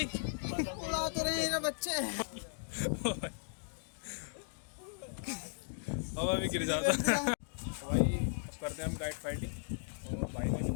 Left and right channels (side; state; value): right; silent; digital silence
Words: उड़ा तो रहे हैं बच्चे। हवा भी गिर जाता। भाई अब करते हैं हम काइट फाइटिंग। और भाई ने भी